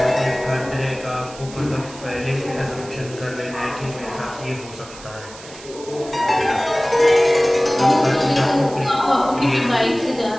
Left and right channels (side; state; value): right; noise; hiss, 17 dB below the sound